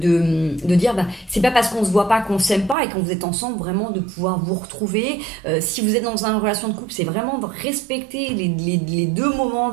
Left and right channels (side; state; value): left; drops out; at 2.8 s